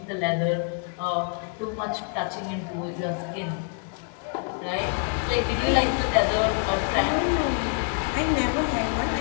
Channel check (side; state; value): right; quieter; 39.9 dB